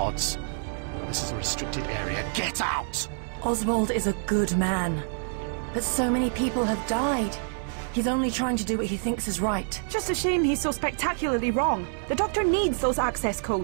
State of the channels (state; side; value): silent; left; digital silence